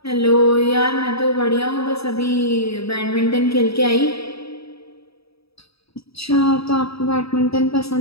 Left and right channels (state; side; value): late; right; 0.77 ms